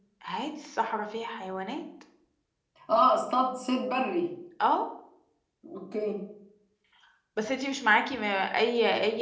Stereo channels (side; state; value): both; identical; correlation 1.00